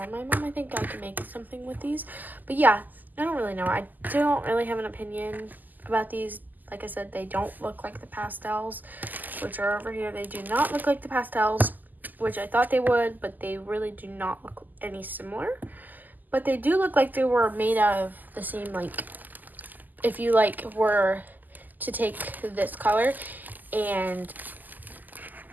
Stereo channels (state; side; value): late; left; 0.084 ms